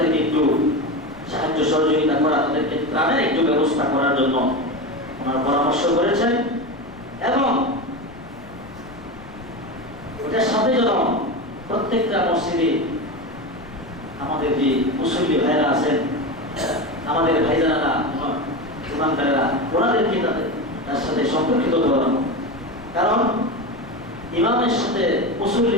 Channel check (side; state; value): left; noise; rumble, 20 dB below the sound